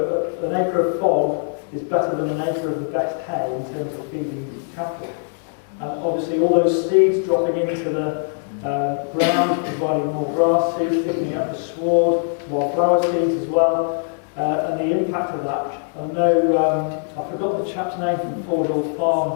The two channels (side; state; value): right; silent; digital silence